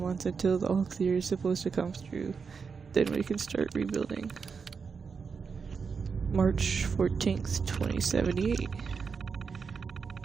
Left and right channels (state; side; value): quieter; left; 5.6 dB